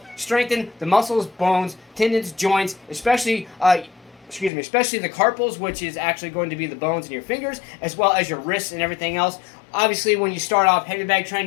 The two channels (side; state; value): right; drops out; at 4.5 s